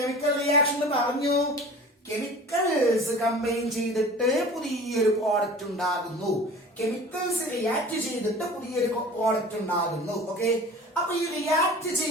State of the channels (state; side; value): normal; both; correlation 0.41